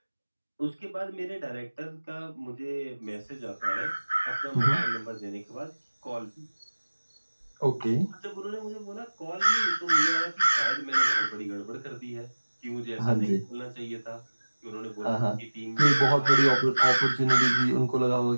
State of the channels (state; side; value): inverted; both; correlation -1.00